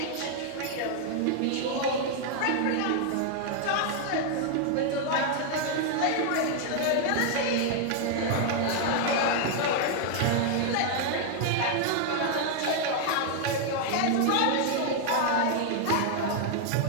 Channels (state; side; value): different; both; correlation 0.00